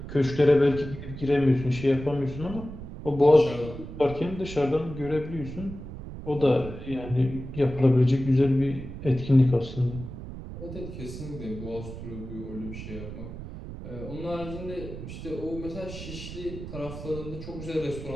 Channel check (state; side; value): noise; right; rumble, 10 dB below the sound